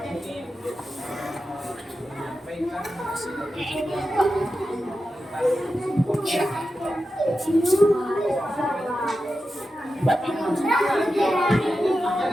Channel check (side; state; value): both; normal; correlation 0.91